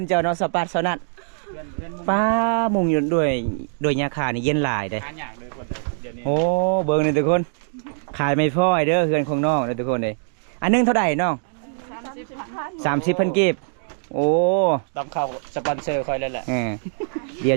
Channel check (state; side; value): silent; left; digital silence